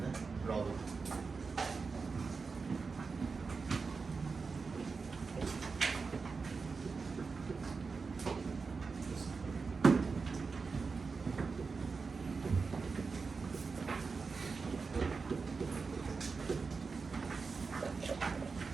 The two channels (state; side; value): quieter; left; 4.7 dB